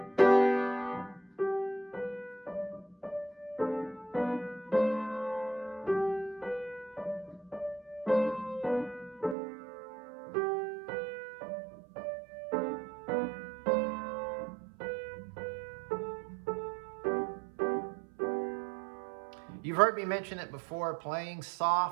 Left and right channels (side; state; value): left; drops out; at 9.3 s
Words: You've heard me mention it before, playing